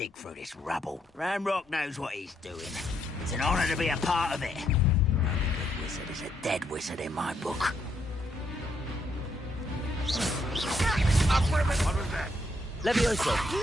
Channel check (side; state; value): both; normal; correlation 0.75